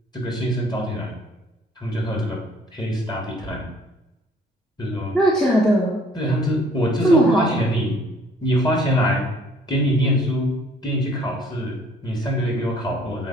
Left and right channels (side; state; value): both; normal; correlation 0.58